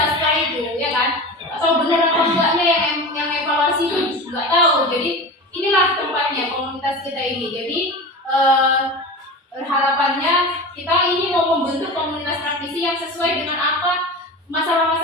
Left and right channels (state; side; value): normal; both; correlation 0.30